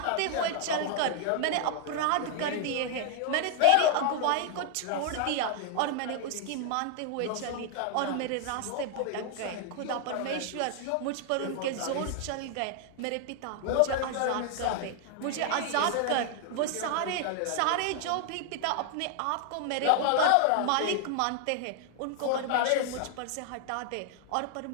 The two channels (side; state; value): both; different; correlation 0.00